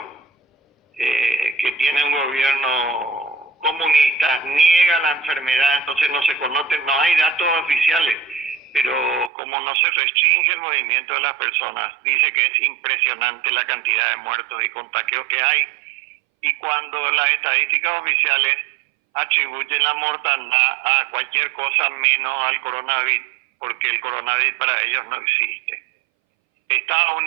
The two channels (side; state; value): left; drops out; at 9.3 s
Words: que tiene un gobierno comunista, niega la enfermedad, entonces no se conocen, no hay datos oficiales, pero como no se restringe el movimiento de las personas, dice que es impresionante la cantidad de muertos y contagios que hay. Y cuando las estadísticas oficiales atribuyen la mortandad a cualquier cosa menos al coronavirus, porque el coronavirus para ellos no existe. Estados